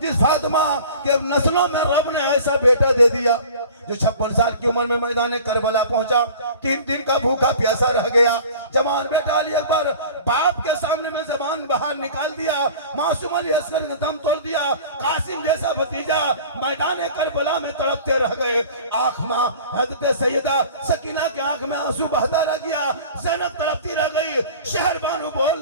जिस फातिमा के नस्लों में रब ने ऐसा बेटा दे दिया जो 56 साल की उम्र में मैदान करबला पहुंचा, 3 दिन का भूखा प्यासा रह गया। जवान बेटा अली अकबर बाप के सामने में जबान बाहर निकाल दिया, मासूम अली असगर ने दम तोड़ दिया, कासिम जैसा भतीजा मैदान करबला में तड़पते रह गए। आंख में हजरत सैयदा सकीना के आंख में आंसू बहता रह गया, ज़ैनब तड़पती रह गई, शहर बानू बोल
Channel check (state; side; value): inverted; both; correlation -0.42